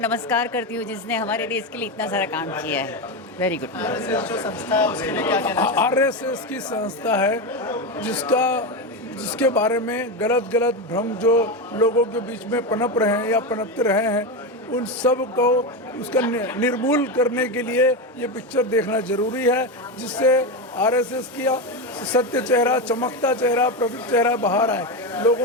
करती हूँ जिसने हमारे देश के लिए इतना सारा काम किया है। Very good. जो संस्था है उसके लिए क्या कहना चाहिए? आरएसएस की संस्था है जिसके बारे में गलत भ्रम जो लोगों के बीच में पनप रहे हैं या पनपते रहे हैं, उन सब को उसका निर्मूल करने के लिए ये पिक्चर देखना जरूरी है, जिससे आरएसएस की सत्य चेहरा, चमकता चेहरा, प्रतीक चेहरा बाहर आए।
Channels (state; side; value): normal; both; correlation 0.14